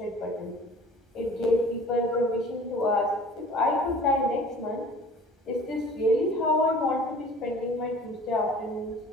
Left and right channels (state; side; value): normal; both; correlation 0.47